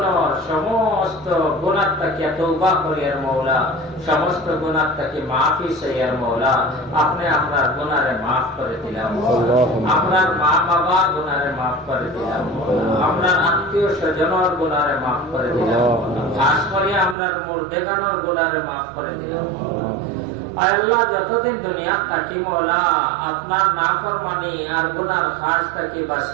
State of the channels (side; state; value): left; drops out; at 17.2 s